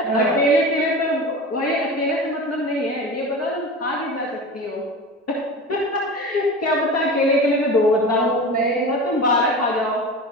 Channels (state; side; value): normal; both; correlation 0.31